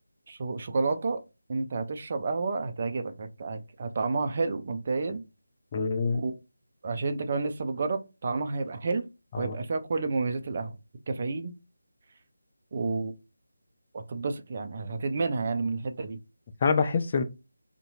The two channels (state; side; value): inverted; both; correlation -0.84